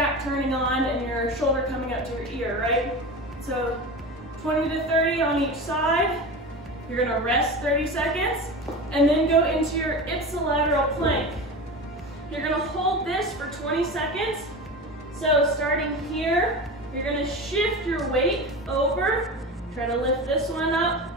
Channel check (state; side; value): normal; both; correlation 0.28